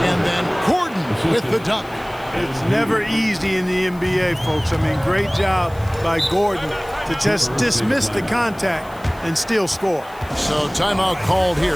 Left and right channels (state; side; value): noise; left; hiss, 25 dB below the sound